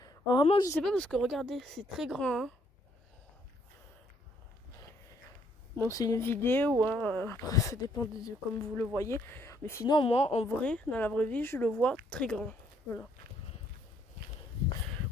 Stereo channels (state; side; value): normal; both; correlation 0.69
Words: Alors, vraiment je sais pas parce que regardez, c'est très grand. Hein. Bon c'est une vidéo, hein. Après ça dépend de comme vous le voyez. Mais sinon moi en vrai, dans la vraie vie, je le vois très grand. Voilà.